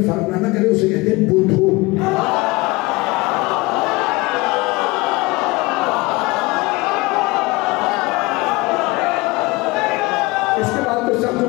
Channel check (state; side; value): quieter; right; 22.9 dB